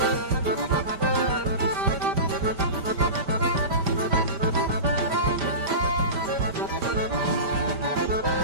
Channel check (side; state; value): left; late; 5.0 ms